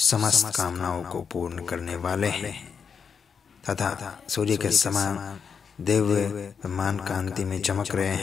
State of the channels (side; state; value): right; quieter; 6.3 dB